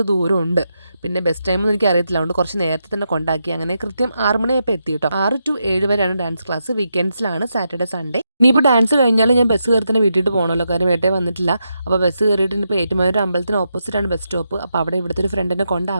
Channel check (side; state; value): both; inverted; correlation -0.84